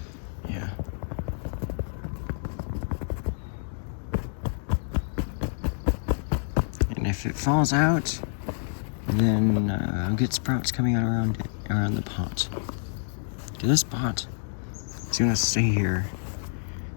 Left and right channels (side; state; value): right; silent; digital silence